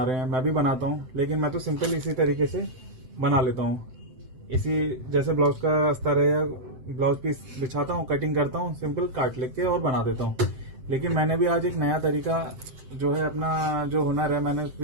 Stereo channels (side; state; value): left; late; 7.8 ms